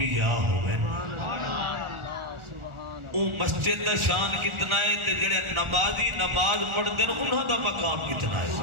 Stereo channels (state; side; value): late; left; 1.4 ms